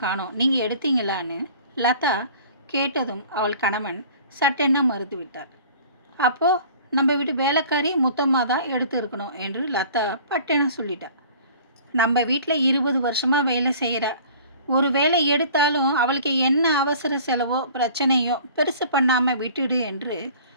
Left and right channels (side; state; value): both; inverted; correlation -0.47